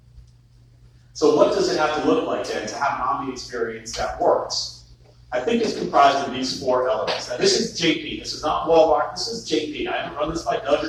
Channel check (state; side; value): identical; both; correlation 1.00